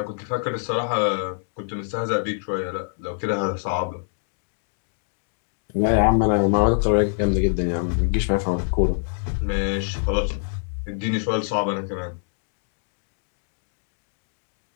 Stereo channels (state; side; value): silent; right; digital silence